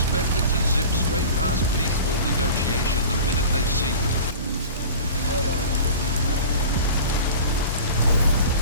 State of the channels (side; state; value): both; inverted; correlation -0.38